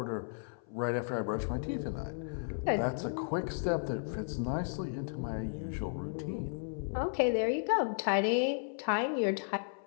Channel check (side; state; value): right; silent; 55 dB below the other